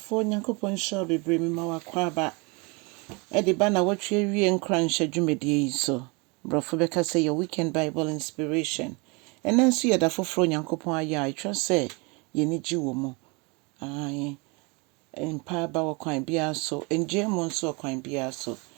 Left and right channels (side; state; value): left; quieter; 29.3 dB